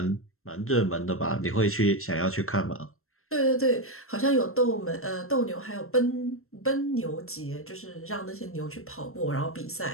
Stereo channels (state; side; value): late; right; 0.62 ms